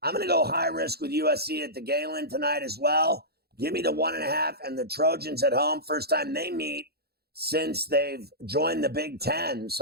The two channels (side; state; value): left; late; 0.46 ms